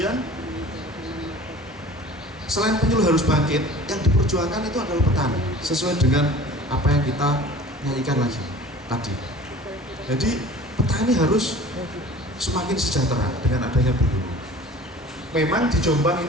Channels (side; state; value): both; normal; correlation 0.44